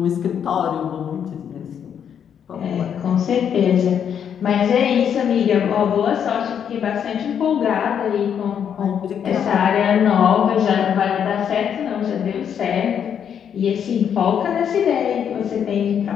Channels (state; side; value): quieter; right; 8.3 dB